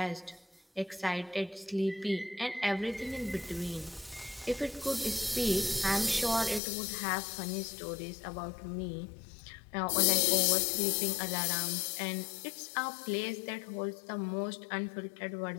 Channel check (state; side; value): drops out; right; at 6.6 s